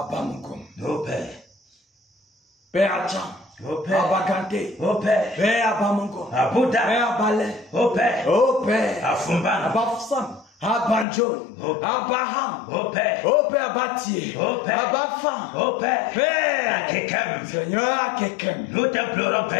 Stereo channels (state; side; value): drops out; right; at 11.1 s